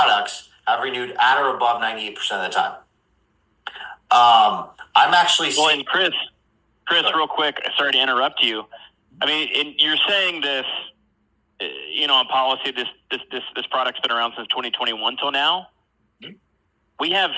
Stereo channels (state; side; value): identical; both; correlation 1.00